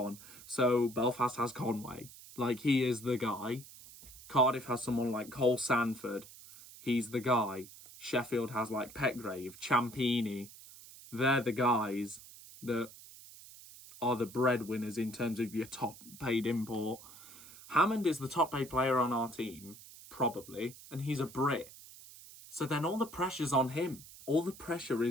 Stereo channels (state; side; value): noise; right; hiss, 18 dB below the sound